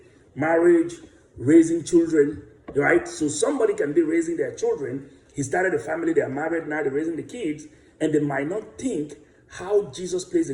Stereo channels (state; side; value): identical; both; correlation 1.00